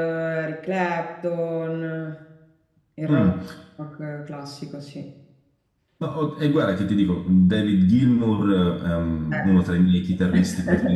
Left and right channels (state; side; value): identical; both; correlation 1.00